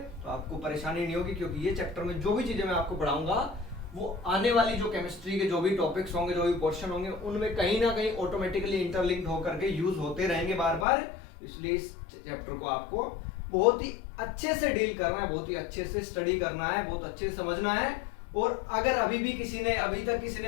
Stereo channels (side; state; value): right; drops out; at 10.9 s